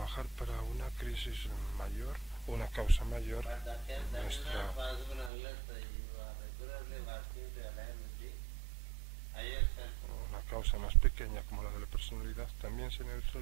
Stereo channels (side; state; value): left; drops out; at 5.3 s